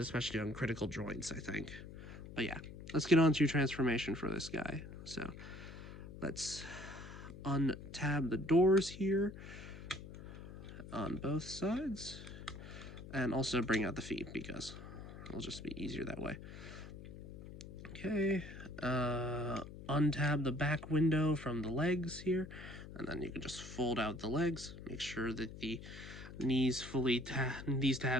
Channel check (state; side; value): noise; left; hum, 13 dB below the sound